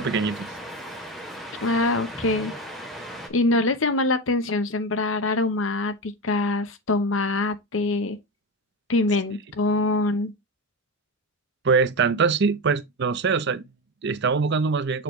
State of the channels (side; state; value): both; normal; correlation 0.18